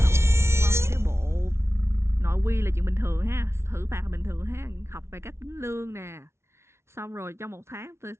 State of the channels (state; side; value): late; left; 0.13 ms